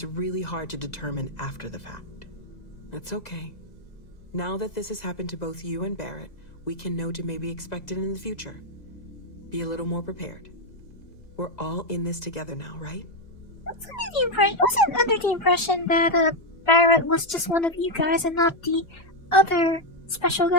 really hard to determine after the fact. That's okay. Now that this has happened to both you and Barrett, we can know to maybe expect it in the future. Be a little more prepared. We're all in this together now, right? I wasn't under the impression that Barrett was just one of you guys and not the other special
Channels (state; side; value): late; right; 2.0 ms